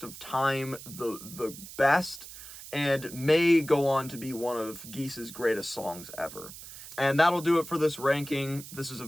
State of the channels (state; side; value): noise; right; hiss, 14 dB below the sound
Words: of time the best and may go on to be one of Geese's greatest songs ever. And that'll do it for this ranking. This is a